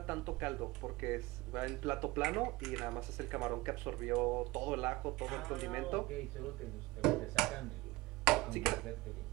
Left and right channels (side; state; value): left; quieter; 20.9 dB